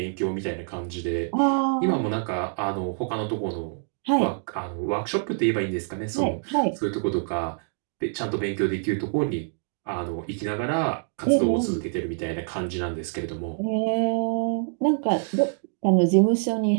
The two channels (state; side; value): silent; left; digital silence